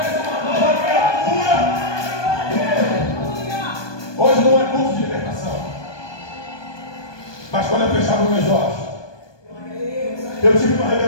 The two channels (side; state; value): right; late; 1.2 ms